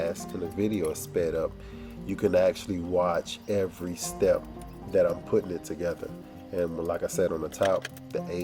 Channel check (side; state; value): both; identical; correlation 1.00